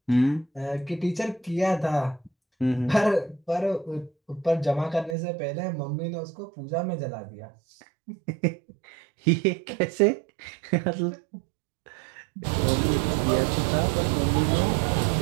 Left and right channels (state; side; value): drops out; left; at 5.2 s